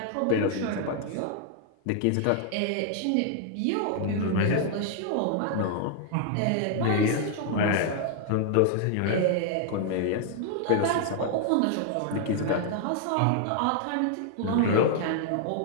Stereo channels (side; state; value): both; different; correlation 0.00